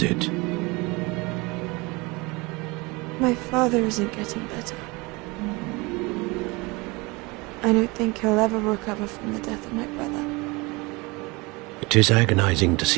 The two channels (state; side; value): quieter; left; 25.2 dB